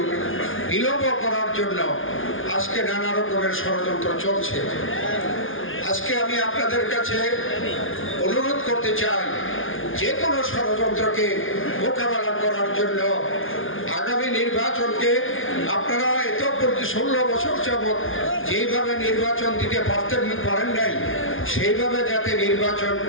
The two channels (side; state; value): right; late; 0.58 ms